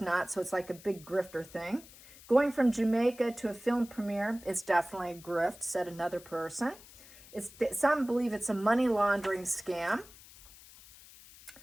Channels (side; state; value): left; noise; hiss, 20 dB below the sound